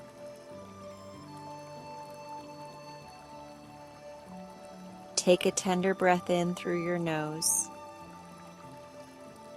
Take a tender breath in through your nose.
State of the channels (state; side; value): identical; both; correlation 1.00